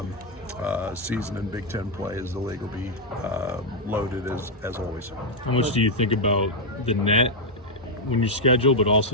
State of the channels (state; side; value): normal; both; correlation -0.01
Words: season in Big Ten play, as the league will be loaded as always. How much do you think about the net when you schedule, but